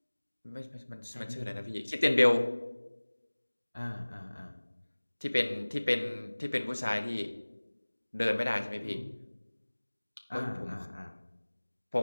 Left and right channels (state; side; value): inverted; both; correlation -1.00